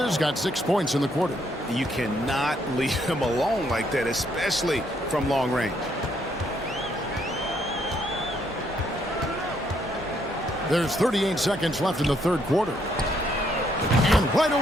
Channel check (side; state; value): both; normal; correlation 0.71